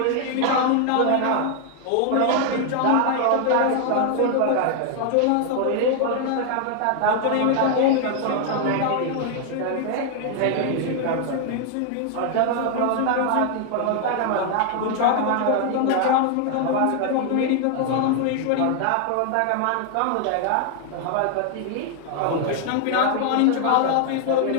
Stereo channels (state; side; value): different; both; correlation 0.00